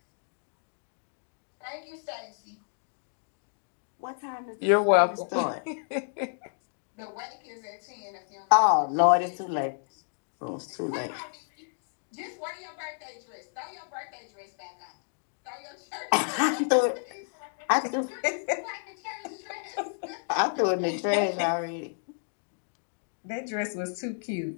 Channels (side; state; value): right; silent; digital silence